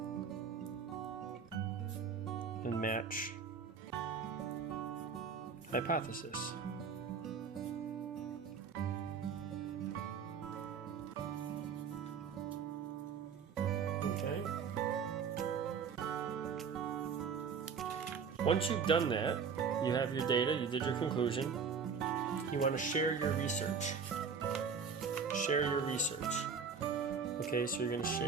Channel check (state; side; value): quieter; left; 6.0 dB